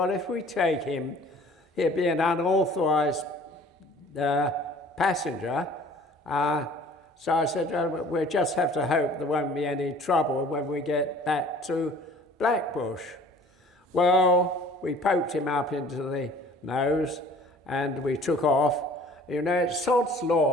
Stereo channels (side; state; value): both; normal; correlation 0.50